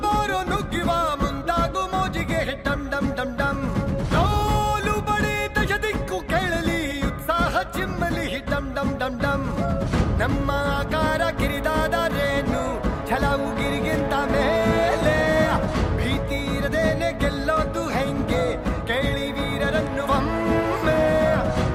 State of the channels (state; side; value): identical; both; correlation 1.00